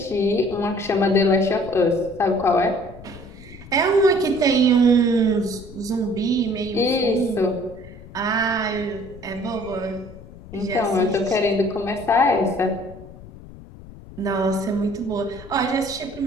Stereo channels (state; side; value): noise; left; rumble, 17 dB below the sound